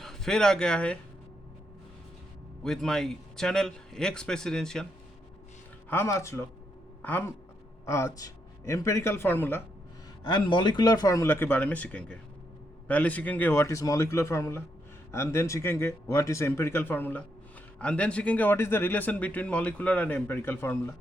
फिर आ गया है with my channel ex presidential. हम आज empirical formula and molecular formula के बारे में सीखेंगे। पहले सीखेंगे what is molecular formula, and then सीखेंगे what is empirical formula, and then सीखेंगे what is the relation between molecular and empirical formula,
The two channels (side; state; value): both; normal; correlation 0.79